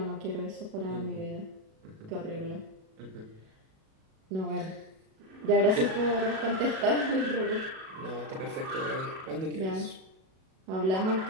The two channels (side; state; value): left; late; 37 ms